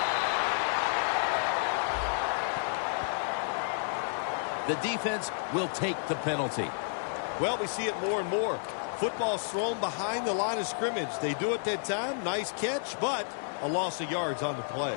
The defense will take the penalty. Well, we see it more and more. Football's thrown behind the line of scrimmage. They do it that time. Nice catch, but a loss of yards on the play.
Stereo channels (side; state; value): right; silent; digital silence